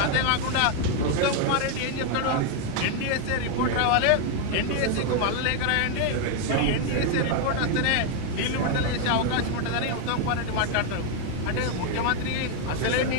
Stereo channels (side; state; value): both; different; correlation 0.01